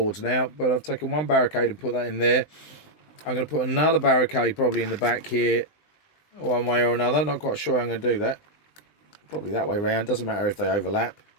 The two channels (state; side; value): late; right; 20 ms